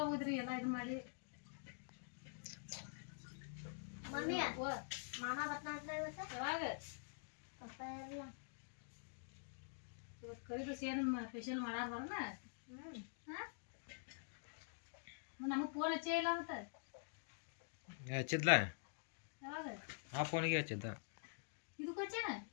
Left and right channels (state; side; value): silent; right; digital silence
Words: ಎಲ್ಲ ಇದು ಮಾಡಿ. ಮಮ್ಮಿ ಮಾಮ ಬರ್ತಾನಂತ ಇವತ್ತು. ಯಾವಾಗ ಪಪ್ಪ ಇರಲ್ಲ. ಇವತ್ತು ಕರಿದು ಸೇನು ಸ್ಪೆಷಲ್ ಮಾಡಾರ ಬರೋಣ. ನಮಗೆ ಫೋನ್ ಹಚ್ಚೇ ಇಲ್ಲ ಅಂತ. ಹಚ್ಚಿದ್ಲ ಯಾವಾಗ ಆ ಫೋನಿಗೆ ಹಚ್ಚಿದ್ದ. ಇದಕ್ಕೆ ಹಚ್ಚೇನ